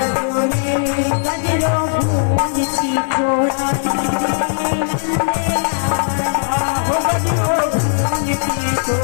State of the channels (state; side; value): silent; right; digital silence